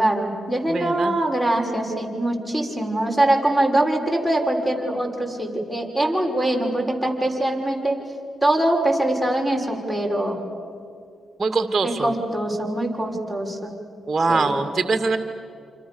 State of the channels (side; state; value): both; normal; correlation 0.91